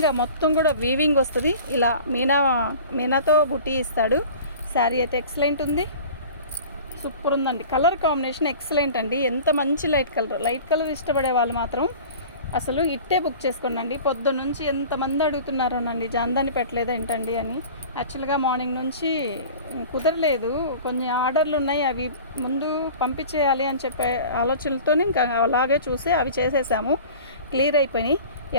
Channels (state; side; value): inverted; both; correlation -0.41